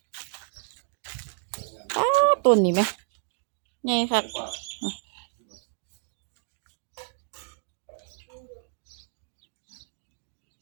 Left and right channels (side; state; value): left; silent; digital silence